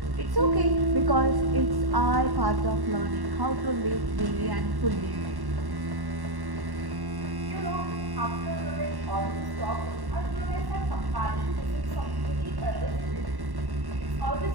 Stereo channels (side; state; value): left; late; 1.1 ms